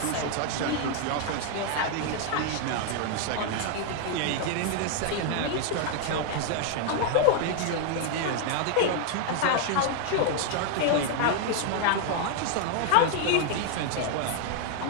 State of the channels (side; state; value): both; different; correlation 0.00